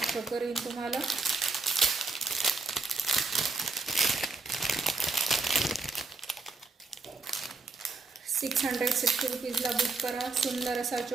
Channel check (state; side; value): quieter; left; 3.9 dB